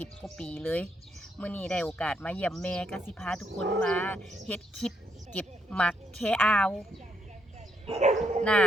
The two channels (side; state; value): both; normal; correlation 0.76